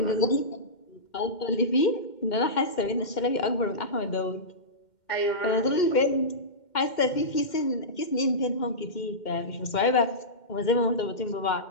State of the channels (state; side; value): late; right; 2.1 ms